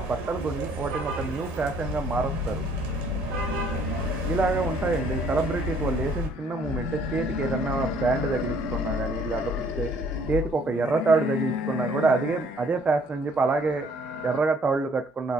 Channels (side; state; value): both; normal; correlation 0.61